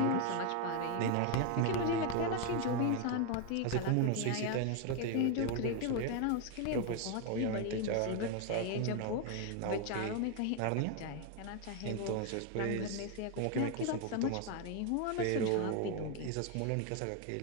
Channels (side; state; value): both; different; correlation 0.01